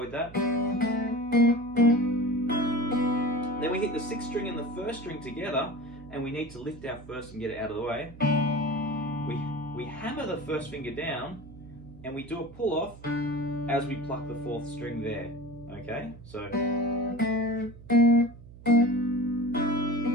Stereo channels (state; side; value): noise; right; hum, 18 dB below the sound